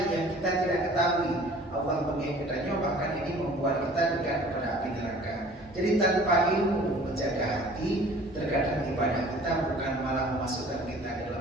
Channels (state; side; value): normal; both; correlation 0.49